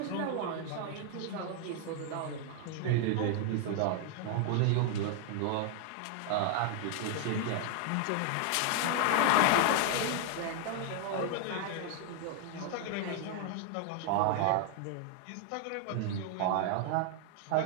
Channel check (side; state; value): both; different; correlation 0.00